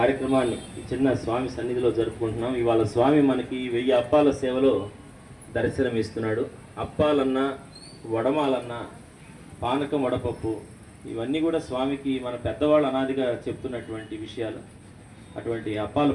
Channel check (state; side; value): identical; both; correlation 1.00